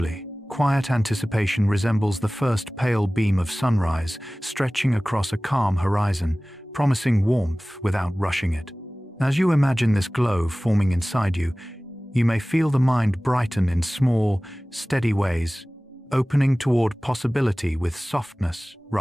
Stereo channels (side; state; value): both; normal; correlation 0.98